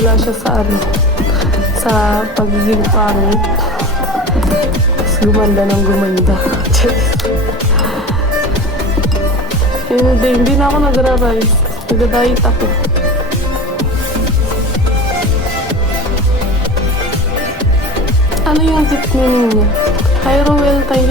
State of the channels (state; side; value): normal; both; correlation 0.34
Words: siya sa sa pagiging pangit. Gumanda ng gumanda. Hindi na ako nagra-rise. Nag-diet ako. Ano yung tip meaning niya? Hi Roel, thank